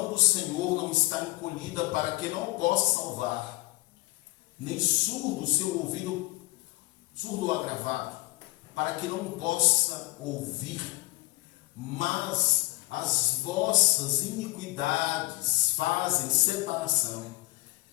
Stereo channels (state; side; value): quieter; right; 21.4 dB